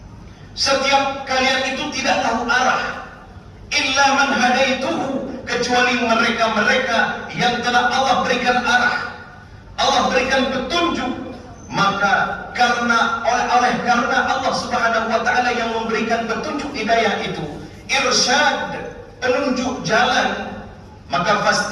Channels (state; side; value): identical; both; correlation 1.00